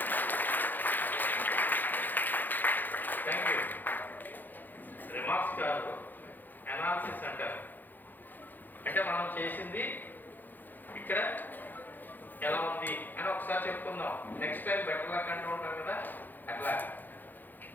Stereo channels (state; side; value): late; right; 0.087 ms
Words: Thank you. Remarks కాదు, అనాలిసిస్ అంటారు. అంటే మనం చేసింది ఇక్కడ ఎలా ఉంది అని ఒకసారి చెప్పుకుందాం. నెక్స్ట్ టైం బెటర్ లక్ అంటూ ఉంటాం కదా, అట్లా